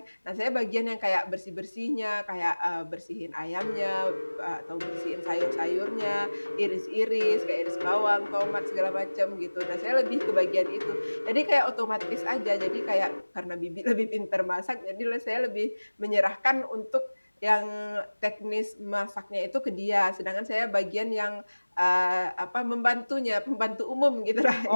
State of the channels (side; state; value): both; inverted; correlation -1.00